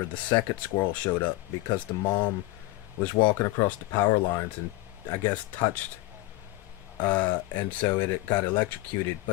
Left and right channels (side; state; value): right; quieter; 18.4 dB